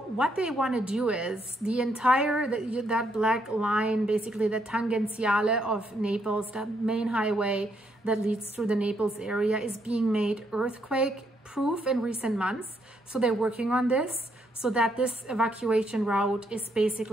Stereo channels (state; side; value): normal; both; correlation 0.75